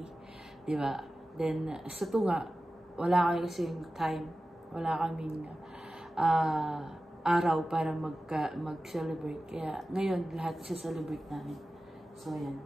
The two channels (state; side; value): normal; both; correlation 0.95